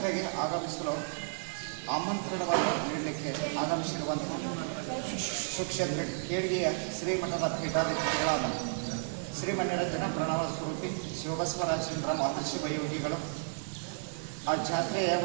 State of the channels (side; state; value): left; silent; digital silence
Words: ಆಗಮಿಸಲು ಆಮಂತ್ರಣವನ್ನು ನೀಡಲಿಕ್ಕೆ ಆಗಮಿಸಿರುವಂತಹ ಸುಕ್ಷೇತ್ರ ಕೇಳಿಗೆಯ ಶ್ರೀಮಠದ ಪೀಠಾಧಿಪತಿಗಳಾದ ಶ್ರೀಮಣ್ಯರಂಜನ ಪ್ರಣವ ಸ್ವರೂಪಿ ಶಿವಬಸವರಾಜೇಂದ್ರ ಮಹರ್ಷಿ ವಯೋಗಿಗಳು ಆ ಜಾತ್ರೆಯ